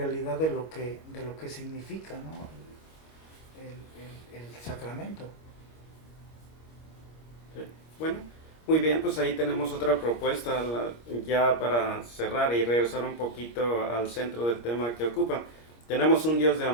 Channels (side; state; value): right; late; 25 ms